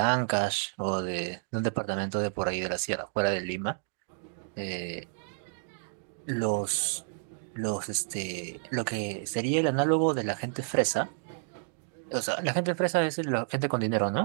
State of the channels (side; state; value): left; silent; digital silence